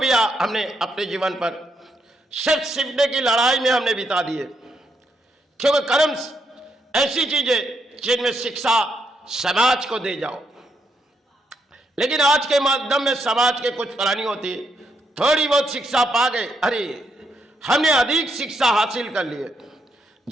हमने अपने जीवन पर सिर्फ सीखने की लड़ाई में हमने बिता दिए, क्योंकि कर्म ऐसी चीज है जिनमें शिक्षा समाज को दे जाओ। लेकिन आज के माध्यम में समाज के कुछ प्राणी होती है, थोड़ी बहुत शिक्षा पा गए, अरे हमने अधिक शिक्षा हासिल कर ली है,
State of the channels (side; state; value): both; normal; correlation 0.78